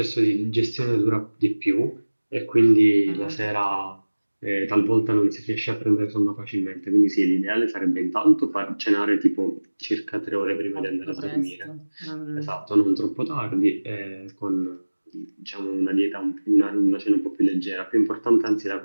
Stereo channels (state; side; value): inverted; both; correlation -1.00